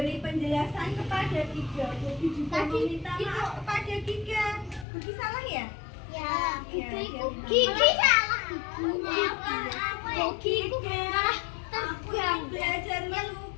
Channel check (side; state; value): right; drops out; at 4.9 s